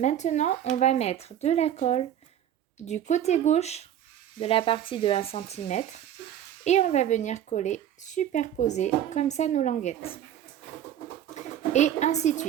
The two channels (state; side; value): quieter; left; 10.6 dB